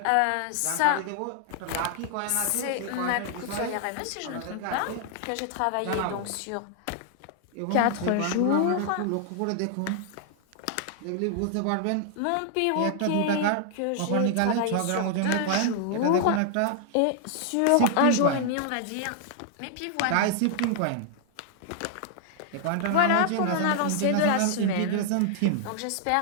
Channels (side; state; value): both; different; correlation 0.00